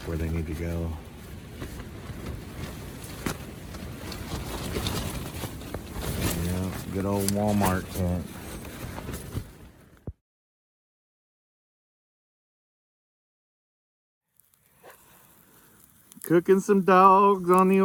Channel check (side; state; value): both; identical; correlation 1.00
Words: where they need to go. Yeah, good old Walmart tent. Cooking some dogs on the